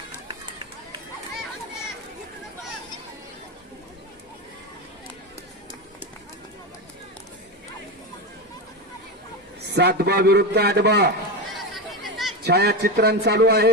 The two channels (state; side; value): normal; both; correlation 0.17